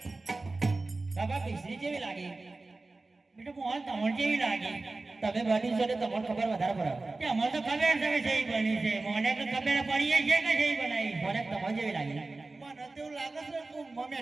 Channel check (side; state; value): left; quieter; 3.3 dB